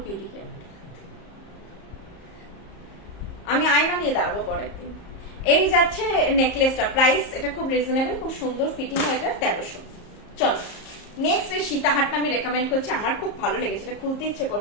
কি দিকে আমি আয়না নিয়ে দাঁড়াবো পরের দিন। এই যাচ্ছে নেকলেসটা, প্রাইস এটা খুব রিজনেবল, খুব সুন্দর ফিটিং হয়, এটা 1300। চলো নেক্সট এই সীতাহারটা আমি রেকমেন্ড করছি, আমার খুব ভালো লেগেছে, এটা খুলতে ইচ্ছে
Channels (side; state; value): right; late; 34 ms